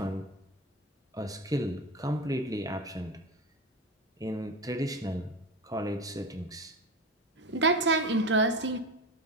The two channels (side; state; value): both; normal; correlation 0.23